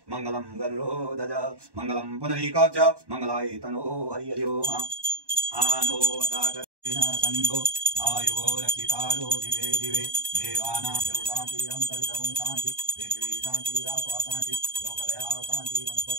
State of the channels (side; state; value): left; late; 1.1 ms